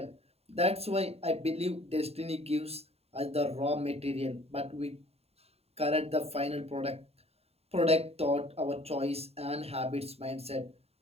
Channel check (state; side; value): late; left; 0.30 ms